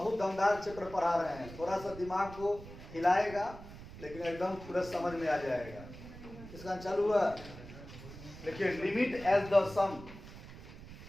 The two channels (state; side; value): noise; right; rumble, 15 dB below the sound